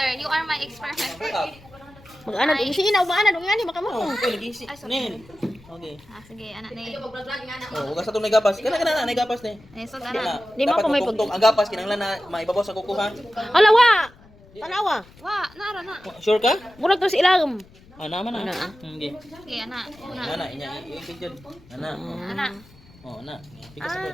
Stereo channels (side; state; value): left; noise; rumble, 25 dB below the sound